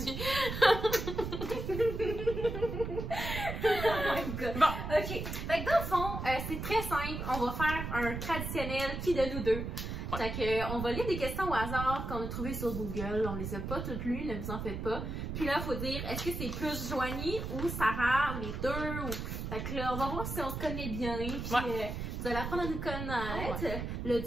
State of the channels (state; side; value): noise; right; rumble, 5 dB below the sound